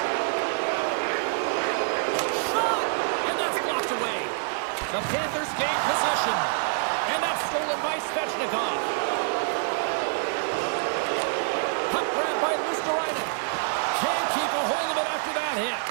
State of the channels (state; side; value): silent; left; 61 dB below the other